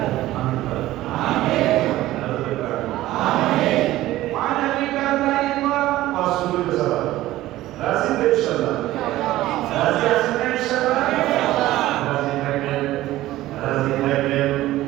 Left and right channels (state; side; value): quieter; left; 15.7 dB